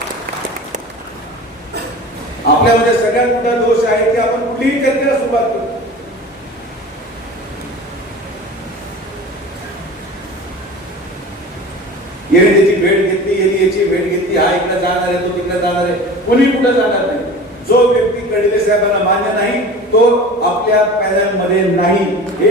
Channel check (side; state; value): both; normal; correlation 0.37